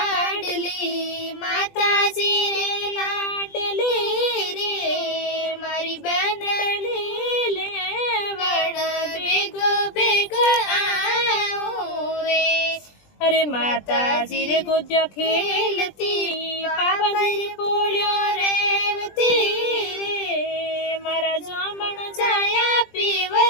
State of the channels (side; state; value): right; late; 20 ms